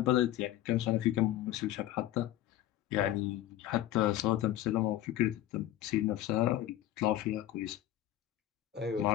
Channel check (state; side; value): quieter; right; 13.6 dB